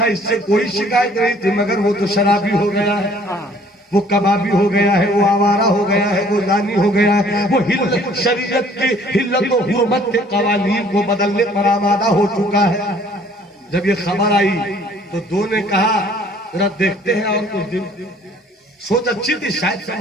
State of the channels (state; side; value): normal; both; correlation 0.57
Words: اس سے کوئی شکایت نہیں تھی مگر وہ تو شرابی ہو گیا ہے. وہ کبابی ہو گیا ہے. وہ آوارہ ہو گیا ہے. وہ زانی ہو گیا ہے. وہ شریعت کی حلت و حرمت کے قوانین کو بدلنے پر آمادہ ہو چکا ہے. جب یہ خبر آئی تو 2 نے کہا ذرا دیکھتے ہیں اور کچھ دن. سوچ اچھی تھی شاید